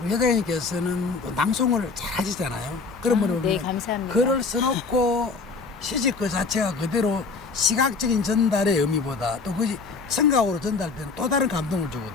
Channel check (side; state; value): right; quieter; 4.4 dB